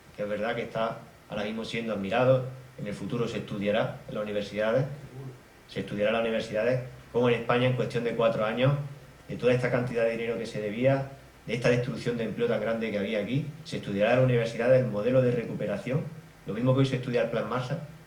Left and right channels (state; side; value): identical; both; correlation 1.00